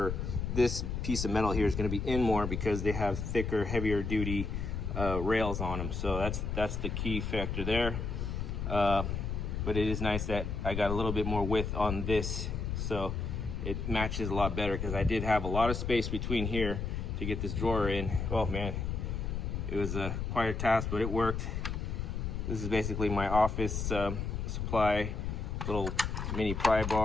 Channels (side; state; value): left; noise; rumble, 3 dB below the sound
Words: this piece of metal here is going to be in more because they have thicker, heavier duty rails on them. So that's the key factor there. But it is nice that I got a little bit more width on this, so it matches a lot better, because I did have a lot of space between here to get this drawer in. Oh man, it was quite a task, but it worked. This is basically my office supply, little mini pry